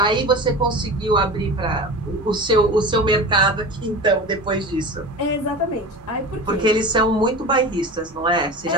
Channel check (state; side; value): normal; both; correlation 0.31